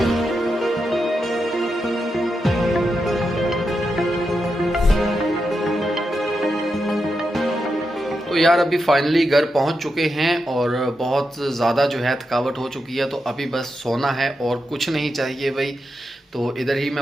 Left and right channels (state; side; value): normal; both; correlation 0.87